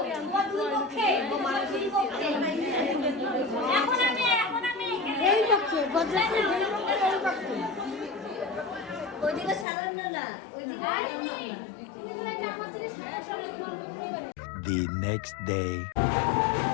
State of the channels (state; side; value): drops out; right; at 9.7 s